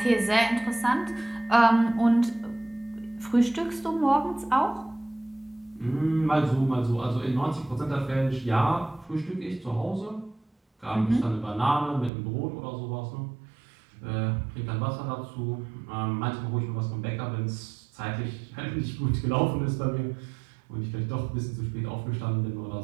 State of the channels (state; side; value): drops out; left; at 12.1 s